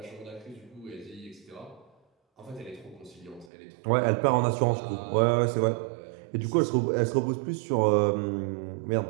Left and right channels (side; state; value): left; drops out; at 3.5 s